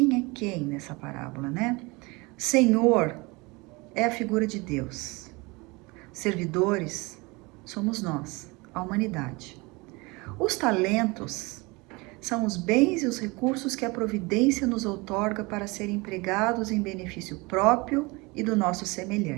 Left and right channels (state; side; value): quieter; left; 25.5 dB